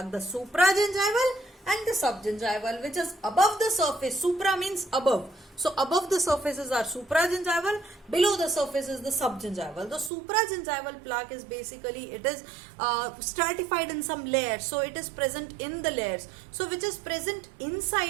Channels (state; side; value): drops out; left; at 10.1 s